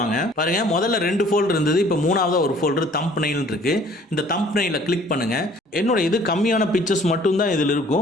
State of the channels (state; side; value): normal; both; correlation 0.55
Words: பாருங்க, முதல்ல 2 ஃபோல்டர் இருந்தது, இப்போ 3ஆவதா ஒரு ஃபோல்டர் தம்ப்நெயில் இருக்கு. இந்த தம்ப்நெயில கிளிக் பண்ணுங்க. என்னோட இது கம்மியான பிக்சர்ஸ் மட்டும் தான் இதில்